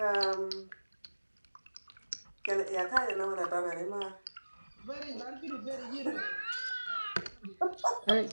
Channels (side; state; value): both; inverted; correlation -1.00